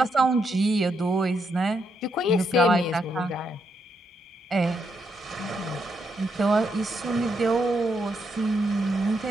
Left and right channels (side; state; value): both; normal; correlation 0.79